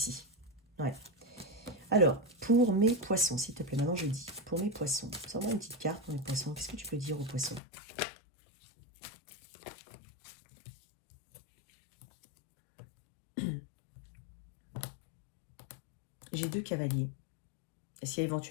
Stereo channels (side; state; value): right; drops out; at 7.6 s